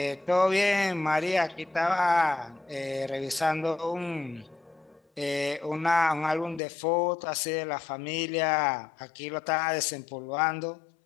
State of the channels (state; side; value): drops out; right; at 6.6 s